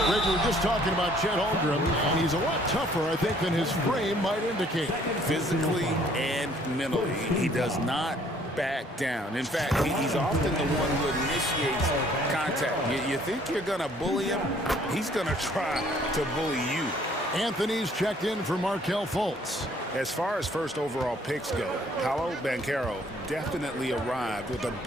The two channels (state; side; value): normal; both; correlation 0.60